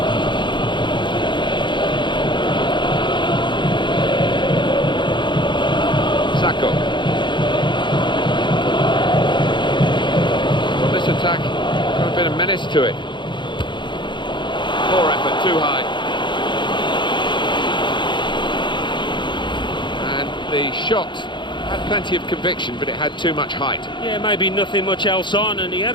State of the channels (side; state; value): right; late; 0.23 ms